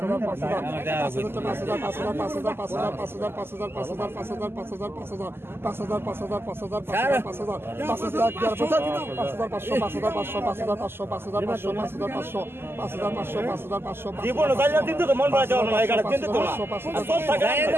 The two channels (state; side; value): late; left; 0.11 ms